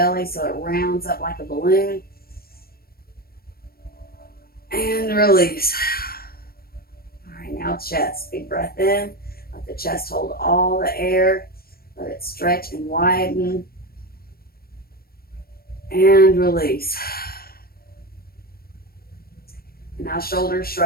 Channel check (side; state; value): right; late; 0.44 ms